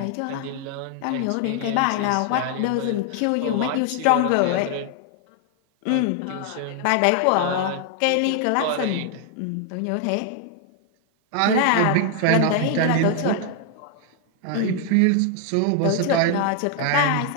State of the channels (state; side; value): different; both; correlation 0.00